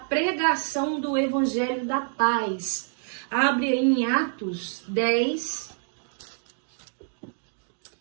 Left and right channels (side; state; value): left; silent; 57 dB below the other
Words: do Evangelho da Paz. Abre em Atos 10,